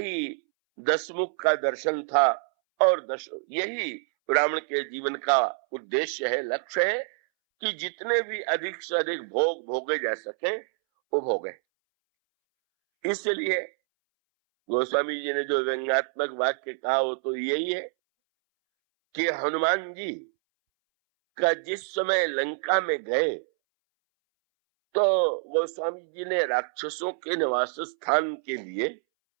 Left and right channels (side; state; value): left; silent; 60 dB below the other